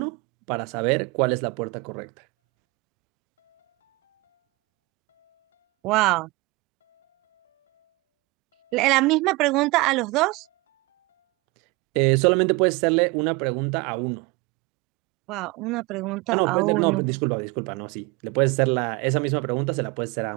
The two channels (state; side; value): quieter; left; 24.6 dB